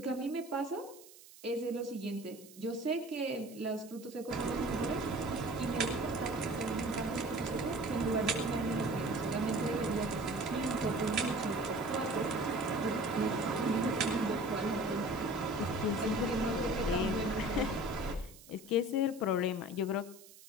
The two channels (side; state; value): right; noise; hiss, 20 dB below the sound